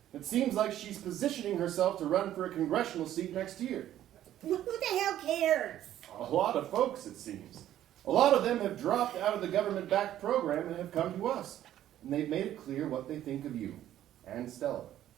It seems like she's positioning herself to run for a congressional seat next year. Who the hell cares? A lot of folks, it seems. A lot of them have dropped out of the government-backed program and have come to us. And they've made it clear what they think of you and Stella.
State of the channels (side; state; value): left; quieter; 12.2 dB